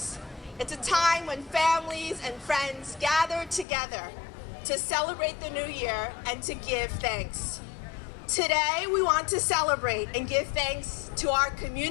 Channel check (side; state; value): right; drops out; at 3.7 s